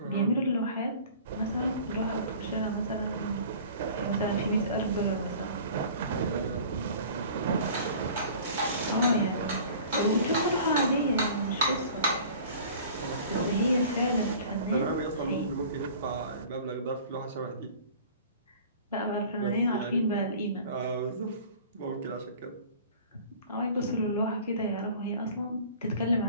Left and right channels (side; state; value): both; inverted; correlation -0.45